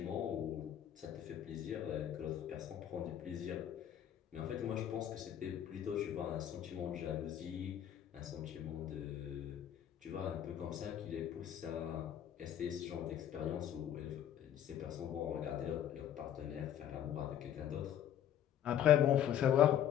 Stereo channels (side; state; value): right; quieter; 10.4 dB